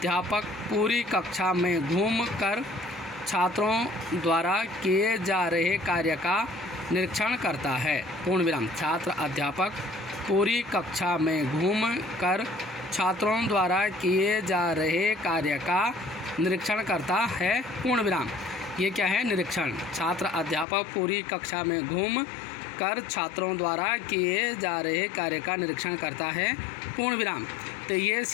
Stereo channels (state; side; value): drops out; right; at 20.7 s